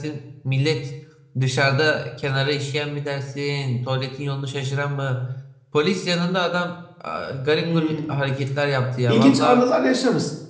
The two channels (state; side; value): identical; both; correlation 1.00